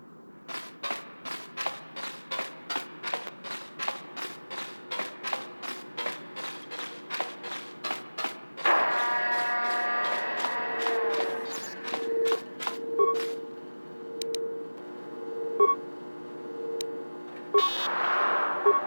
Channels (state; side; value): inverted; both; correlation -1.00